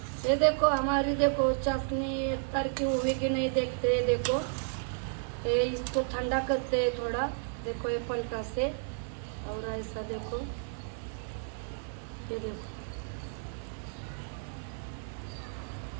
ये देखो हमारी देखो चाशनी तर की हुई कि नहीं देखते हैं। देखो ये इसको ठंडा करते हैं थोड़ा। देखो ये पलटा से और ऐसा देखो, ये देखो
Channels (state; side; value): silent; left; digital silence